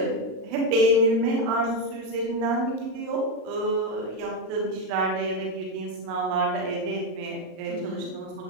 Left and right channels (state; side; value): late; left; 36 ms